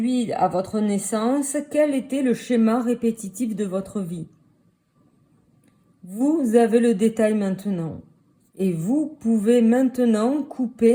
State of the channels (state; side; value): identical; both; correlation 1.00